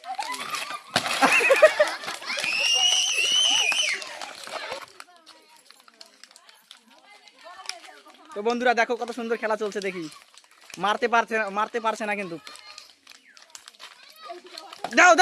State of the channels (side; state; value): both; identical; correlation 1.00